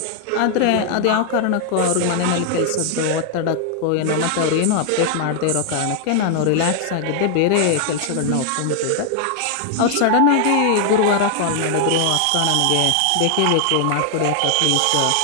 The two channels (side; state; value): both; different; correlation 0.00